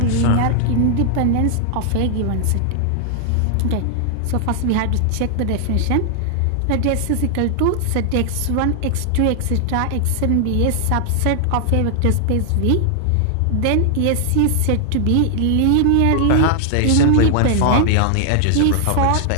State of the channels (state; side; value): different; both; correlation 0.00